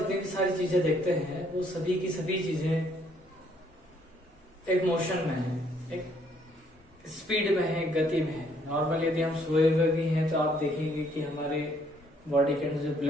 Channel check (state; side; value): normal; both; correlation 0.67